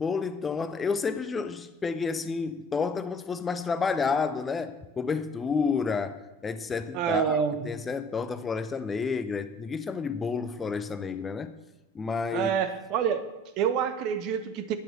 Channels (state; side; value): normal; both; correlation 0.53